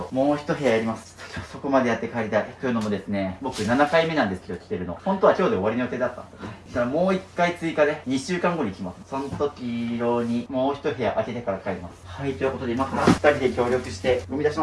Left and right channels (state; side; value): identical; both; correlation 1.00